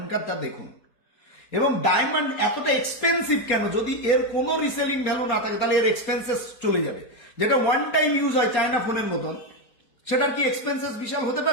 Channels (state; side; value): late; right; 4.2 ms